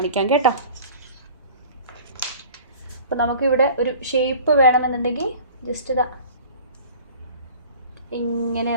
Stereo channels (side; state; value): both; inverted; correlation -0.44